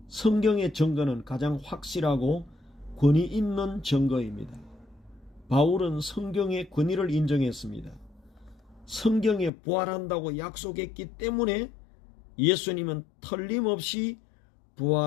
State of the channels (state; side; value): drops out; right; at 9.5 s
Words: 성경의 증거는 가장 확실하고 권위 있는 증거입니다. 바울은 성경의 권위를 인정했습니다. 성경에 부활한다고 약속했기 때문에 예수님은 틀림없이